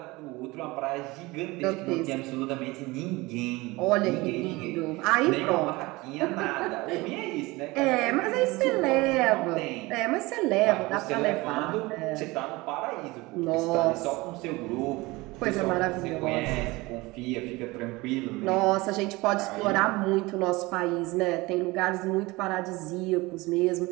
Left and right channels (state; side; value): quieter; left; 22.1 dB